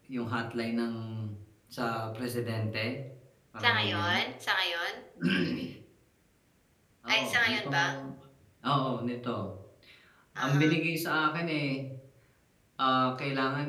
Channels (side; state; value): both; identical; correlation 1.00